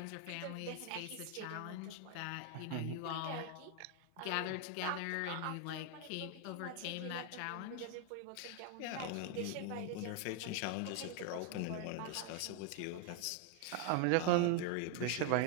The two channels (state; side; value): different; both; correlation 0.00